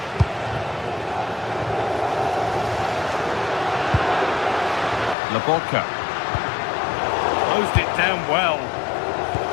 Lobotka. Closed it down well.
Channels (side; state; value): right; drops out; at 5.2 s